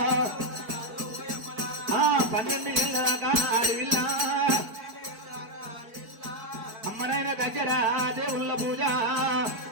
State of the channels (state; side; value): late; left; 4.5 ms